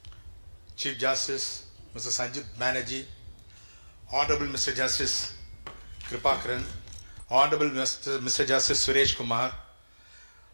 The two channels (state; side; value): inverted; both; correlation -1.00